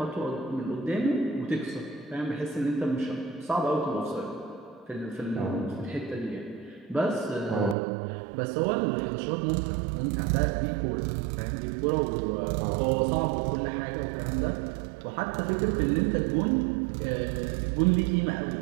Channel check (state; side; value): drops out; left; at 7.8 s